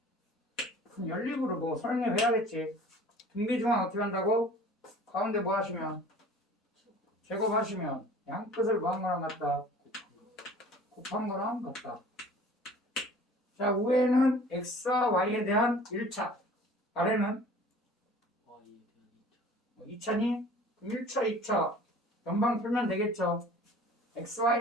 그럼 연립으로 뭐 설명해야겠지. 등비 중앙 어떻게 한다고? 가운데 뭐 하시면? 제곱하시면 양 끝을 뭐한 거랑 같다? 곱한 거랑 같다. 자, 위에는 x와 y에 대한 1차, 아래는 2차니? 1차, 2차 연방 풀면 되겠죠. x,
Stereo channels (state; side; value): normal; both; correlation 0.47